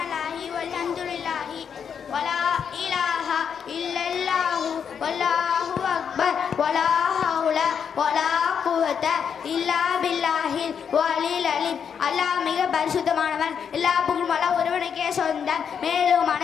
வல்ஹம்துலில்லாஹி வலா இலாஹா இல்லல்லாஹு வல்லாஹு அக்பர் வலா ஹவுல வலா குவத இல்லா பில்லாஹில் வலில் அலீம். அல்லாஹ் மிக பரிசுத்தமானவன். எல்லா புகழும் அல்லாஹ் ஒருவனுக்கே சொந்தம். மேலும்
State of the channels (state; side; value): quieter; right; 7.3 dB